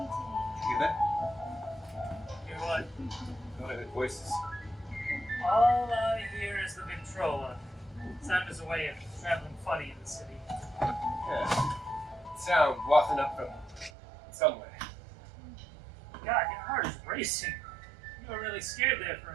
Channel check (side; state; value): left; drops out; at 13.9 s